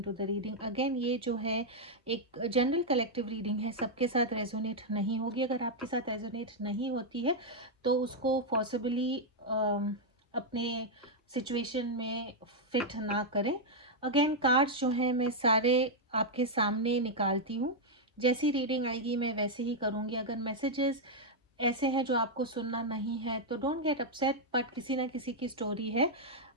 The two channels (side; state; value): both; normal; correlation -0.03